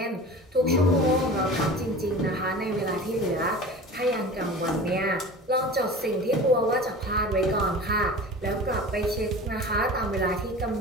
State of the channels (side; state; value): both; normal; correlation 0.37